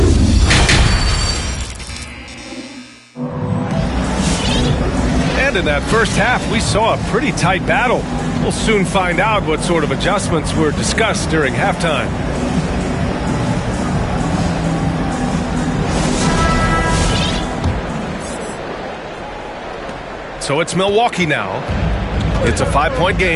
And in that first half, we saw a pretty tight battle. We'll soon find out what sort of adjustments were discussed during halftime. So it's Milwaukee now. It's a 5-point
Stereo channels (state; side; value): identical; both; correlation 1.00